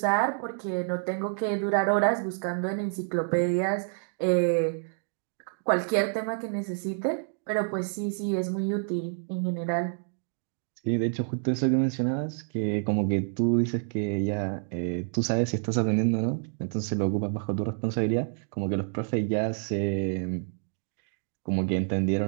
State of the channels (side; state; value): left; silent; digital silence